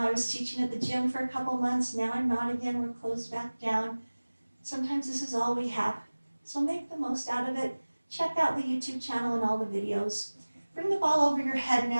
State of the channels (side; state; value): both; inverted; correlation -1.00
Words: I was teaching at the gym for a couple months. Now I'm not again. We're closed back down. Sometimes this is all we have. So make the most out of it. Check out the YouTube channel and all the videos. Bring the ball over your head